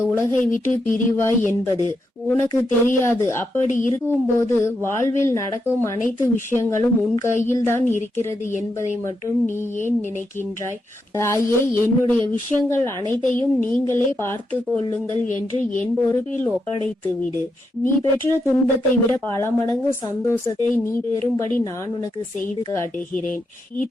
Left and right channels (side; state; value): both; normal; correlation 0.83